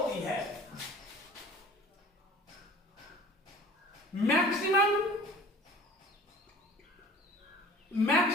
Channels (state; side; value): normal; both; correlation 0.45